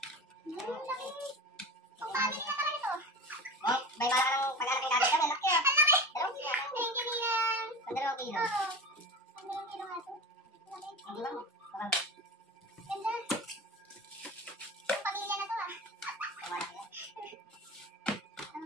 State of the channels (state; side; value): normal; both; correlation 0.30